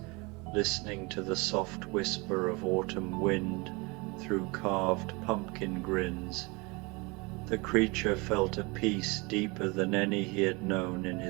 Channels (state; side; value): quieter; left; 27.0 dB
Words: listening to the soft whisper of autumn wind through carved pumpkin grins, the creature felt a peace deeper than any he had known in